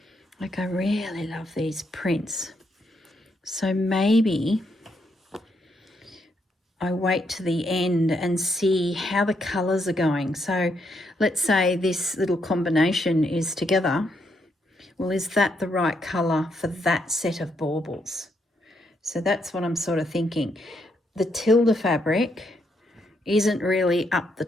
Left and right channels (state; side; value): normal; both; correlation 0.77